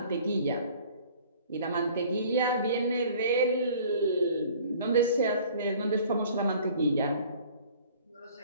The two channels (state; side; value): inverted; both; correlation -0.51